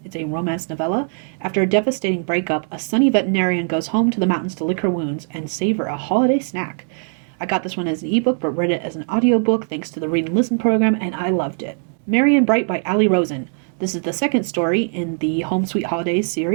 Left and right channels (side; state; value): left; silent; 58 dB below the other